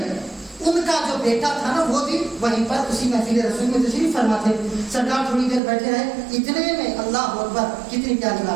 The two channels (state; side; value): drops out; left; at 5.6 s